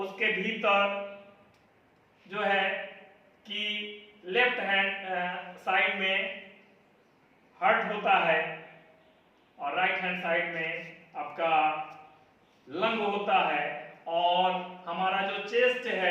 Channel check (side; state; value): both; identical; correlation 1.00